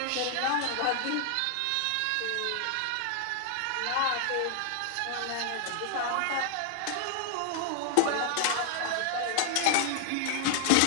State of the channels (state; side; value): different; both; correlation 0.00